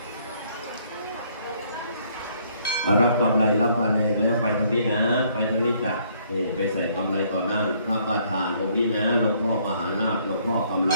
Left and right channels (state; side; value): inverted; both; correlation -0.65